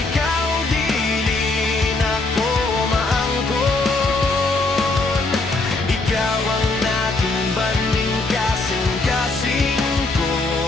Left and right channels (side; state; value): right; quieter; 3.3 dB